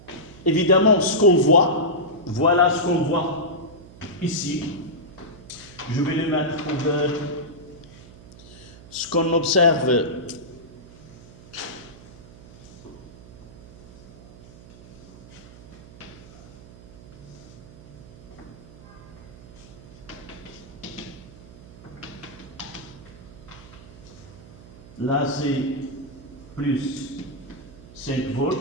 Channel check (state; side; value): noise; right; hum, 19 dB below the sound